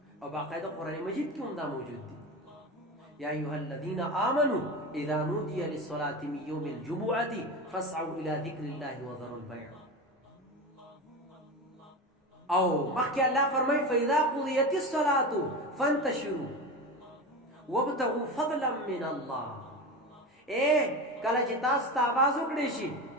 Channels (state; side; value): normal; both; correlation 0.24